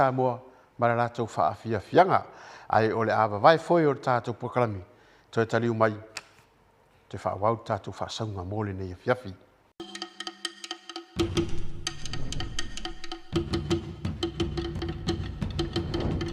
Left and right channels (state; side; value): identical; both; correlation 1.00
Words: ma la tau faafia fianga ai o le ava vai foi o tātou pokalami toi taliu mai te whaawau tātou whaasaunga mōle nei fiafi.